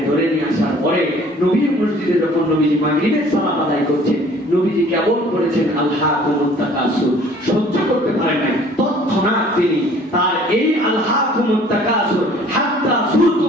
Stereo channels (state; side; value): normal; both; correlation 0.53